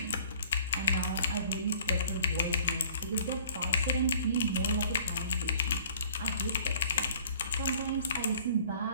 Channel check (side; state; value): both; inverted; correlation -0.53